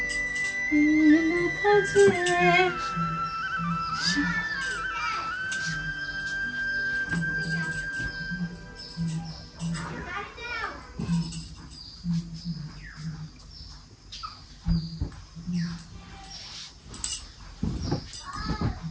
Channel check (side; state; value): both; identical; correlation 1.00